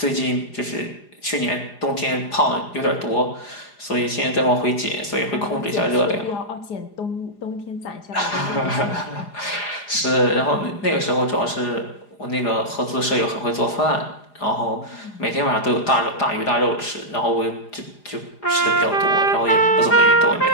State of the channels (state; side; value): late; right; 4.9 ms